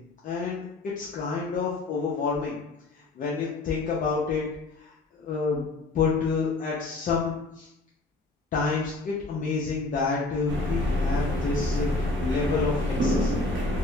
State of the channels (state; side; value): quieter; right; 3.2 dB